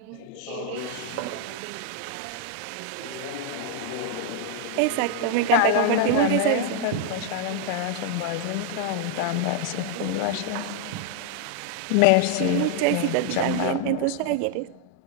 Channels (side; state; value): both; different; correlation 0.00